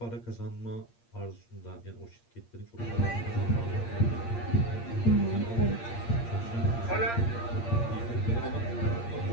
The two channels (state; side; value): late; right; 8.6 ms